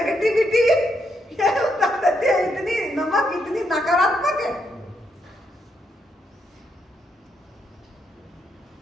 ये उतार देती है, इतनी नमक इतनी नकारात्मक है।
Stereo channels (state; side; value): normal; both; correlation 0.78